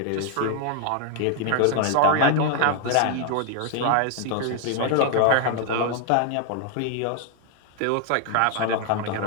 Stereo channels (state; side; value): different; both; correlation 0.00